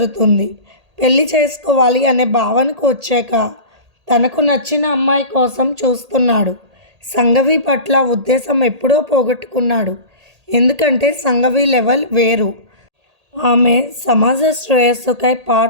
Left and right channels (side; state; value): left; late; 1.8 ms